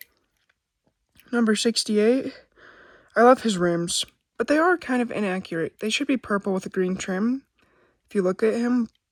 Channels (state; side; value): identical; both; correlation 1.00